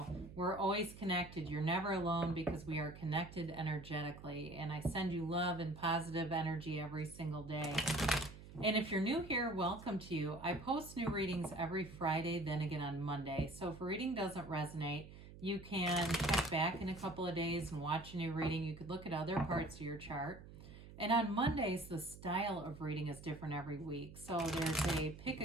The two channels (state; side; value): noise; right; hum, 16 dB below the sound